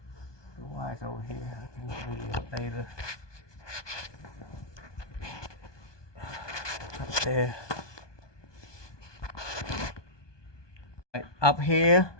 the wire's over here. I can video it later. there. Up here,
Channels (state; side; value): late; right; 1.2 ms